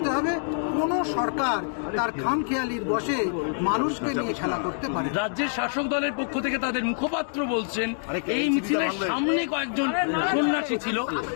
হবে। কোনো সরকার তার খামখেয়ালির বশে মানুষকে নিয়ে খেলা করতে পারে। রাজ্যের শাসক দলের পক্ষ থেকে তাদের মুখপাত্র বলছেন এই মিছিলের সামনে কয়েকজন সন্ন্যাসী ছিল,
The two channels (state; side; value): silent; right; digital silence